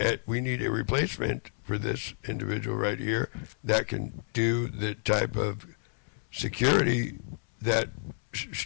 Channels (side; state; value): right; silent; digital silence